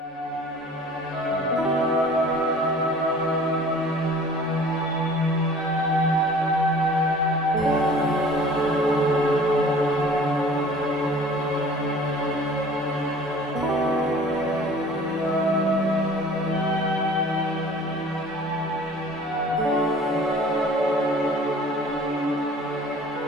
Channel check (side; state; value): both; normal; correlation 0.48